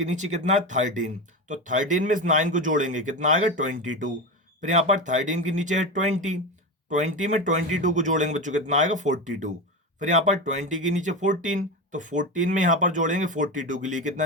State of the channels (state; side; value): normal; both; correlation 0.20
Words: नीचे कितना है, 13। तो 13 में इस 9 को जोड़ेंगे कितना आएगा, 22। फिर यहाँ पर 13 के नीचे है 20। 20 में 22 को जोड़ेंगे बच्चों कितना आएगा, 42। फिर यहाँ पर 20 के नीचे 14। तो 14 में यहाँ पर जोड़ेंगे 42 के लिए